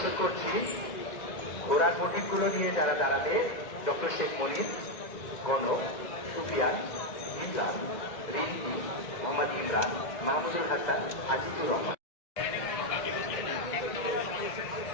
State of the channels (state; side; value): late; right; 2.0 ms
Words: করছি ঘোড়ার প্রতীকগুলো নিয়ে যারা দাঁড়াবে, ডক্টর শেখ মনির, গণক, সুফিয়ান, ইমরান, রিন্টি, মোহাম্মদ ইমরান, মাহমুদুল হাসান, আজিজুর রহমান।